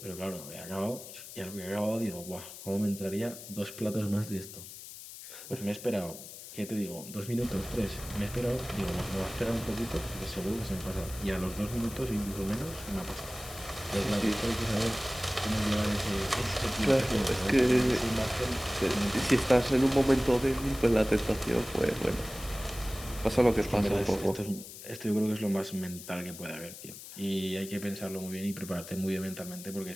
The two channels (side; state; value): left; noise; hiss, 13 dB below the sound